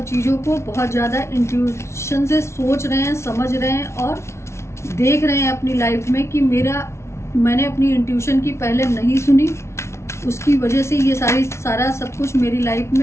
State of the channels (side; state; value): right; late; 0.13 ms